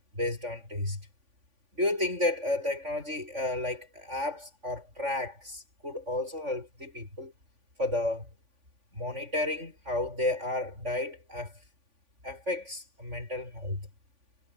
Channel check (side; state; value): left; late; 3.5 ms